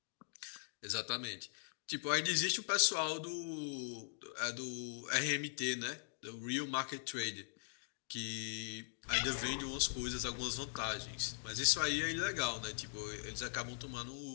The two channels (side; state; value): right; silent; digital silence